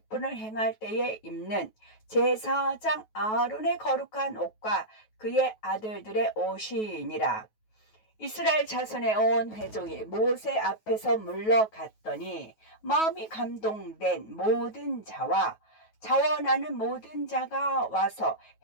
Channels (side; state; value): right; late; 9.3 ms